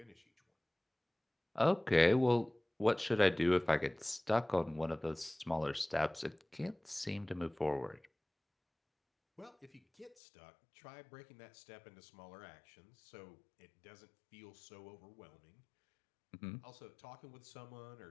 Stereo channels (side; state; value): right; drops out; at 10.2 s